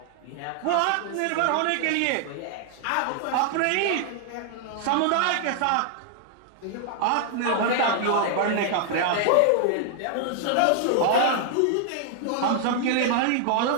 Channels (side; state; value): both; different; correlation 0.00